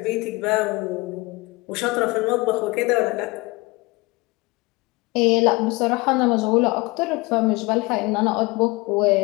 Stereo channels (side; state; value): right; quieter; 24.0 dB